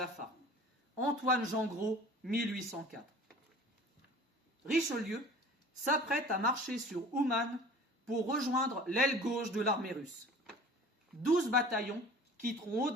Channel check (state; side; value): normal; both; correlation 0.45